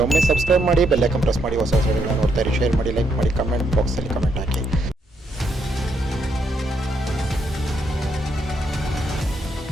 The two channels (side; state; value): both; normal; correlation 0.76